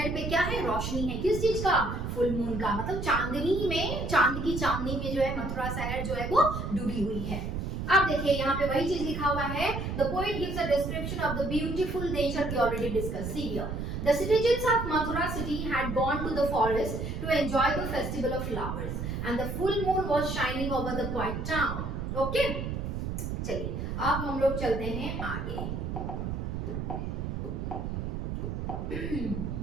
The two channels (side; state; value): right; noise; rumble, 4 dB below the sound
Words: पे क्या है? रोशनी है। किस चीज का? फुल मून का, मतलब चांदनी में, चांद की चांदनी में जो है मथुरा शहर जो है वो डूबी हुई है। अब देखिए यहाँ पे वही चीज लिखा हुआ है, the poet gives a description of the beautiful nature we already discuss. See here, the citizens of Mathura city had gone to the forest to enjoy the festival of flowers and the full moon was shining over the quiet town. Okay, चलिए अब हम लोग चलते हैं आगे।